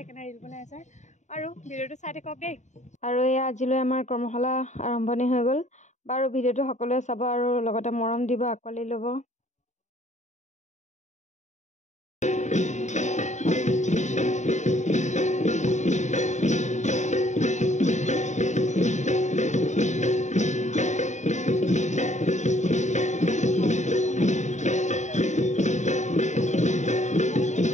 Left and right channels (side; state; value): right; late; 0.34 ms